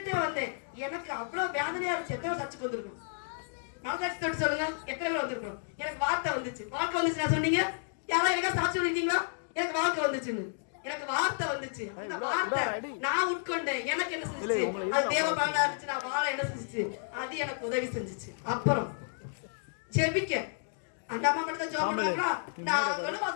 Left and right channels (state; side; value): silent; right; digital silence